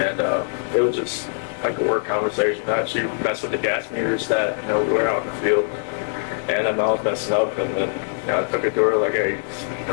it was just like a work conversation. I actually messed with the gas meters that, we were out in the field. And I was messing up. And then, I took it to her like, hey,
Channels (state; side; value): silent; right; digital silence